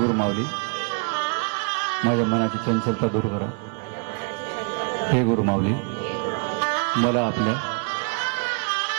माऊली, माझ्या मनाची चंचलता दूर करा. हे गुरु माऊली, मला आपल्या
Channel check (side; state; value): left; quieter; 36.8 dB